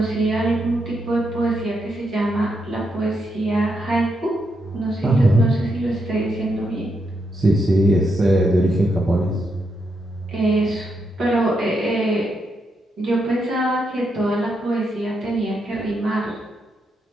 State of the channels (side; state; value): both; normal; correlation 0.81